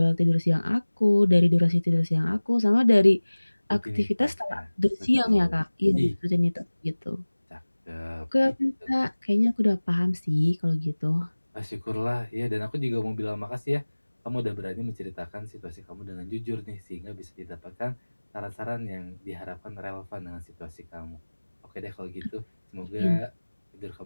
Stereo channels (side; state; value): both; inverted; correlation -1.00